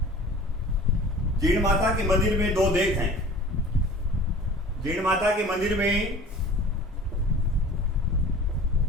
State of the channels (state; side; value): normal; both; correlation 0.44